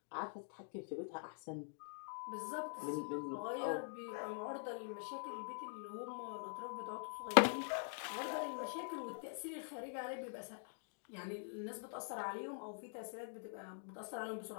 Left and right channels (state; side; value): silent; right; digital silence